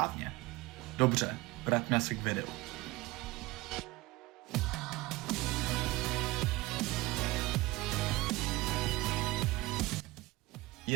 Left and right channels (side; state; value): left; quieter; 20.5 dB